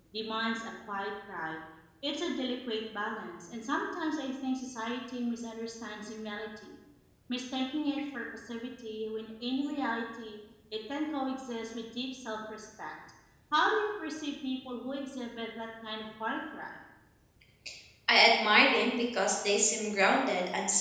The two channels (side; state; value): both; identical; correlation 1.00